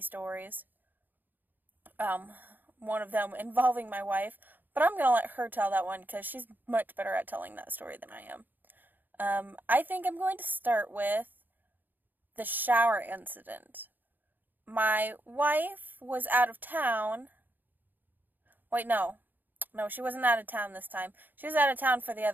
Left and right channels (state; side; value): late; left; 0.088 ms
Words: One of them involving my wife, but I'm gonna let her tell that one, because she's much better at telling that story than I am. I think I'm going to start with the shower incident. My wife was out of town. Wait, no, she wasn't out of town this time. She was out of town for the